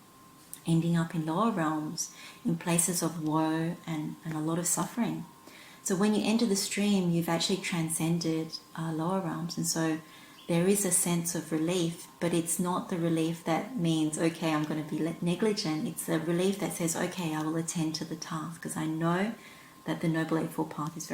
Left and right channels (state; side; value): identical; both; correlation 1.00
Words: ending up in lower realms, in places of woe and a lot of suffering. So when you enter the stream, you've actually transcended lower realms. And so there is a sense of relief, but it's not the relief that means, okay, I'm going to be negligent. It's a relief that says, okay, I will attend to the task because I know that the Noble Eightfold Path is